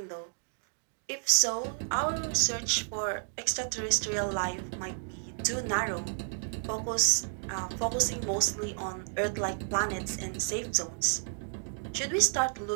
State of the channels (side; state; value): left; silent; digital silence